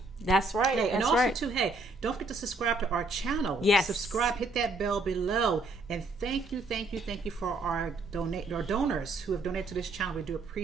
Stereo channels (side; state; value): left; quieter; 3.1 dB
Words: That's right. Hey, and that's also right. too, hey, don't forget to subscribe to our channel. Yes. Subscribe, hit that bell below. And thank you for our donors who have donated to this channel. We do